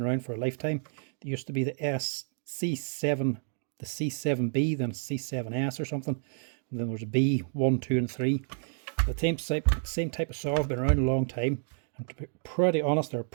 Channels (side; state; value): left; silent; digital silence